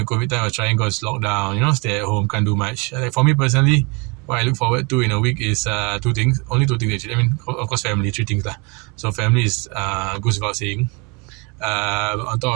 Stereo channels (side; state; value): left; quieter; 30.2 dB